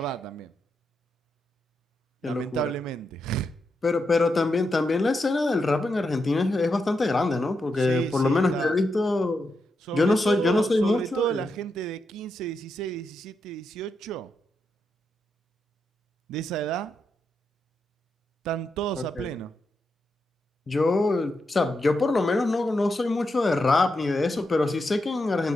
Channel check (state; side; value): normal; both; correlation 0.85